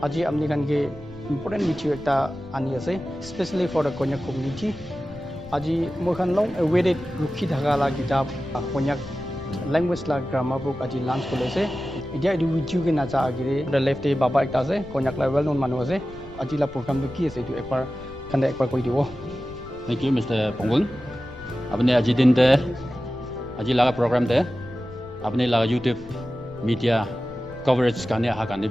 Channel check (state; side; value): noise; left; rumble, 19 dB below the sound